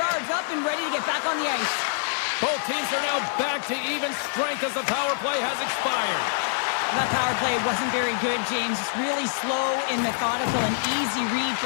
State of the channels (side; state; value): right; silent; digital silence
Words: up and ready to get back on the ice. Both teams are now back to even strength as the power play has expired. That power play wasn't very good, James. It's really slow and methodical, an easy read